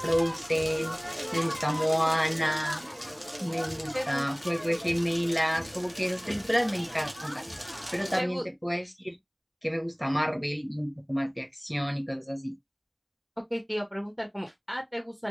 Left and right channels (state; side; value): identical; both; correlation 1.00